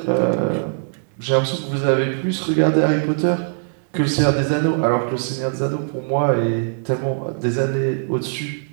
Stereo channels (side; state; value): left; silent; 65 dB below the other